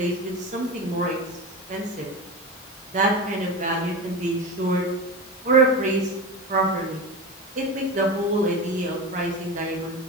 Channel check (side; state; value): both; normal; correlation 0.24